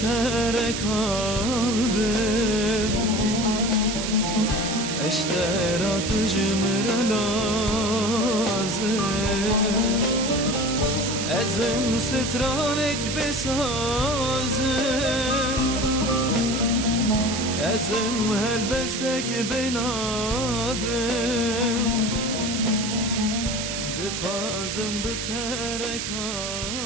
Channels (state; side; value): noise; right; hiss, 4 dB below the sound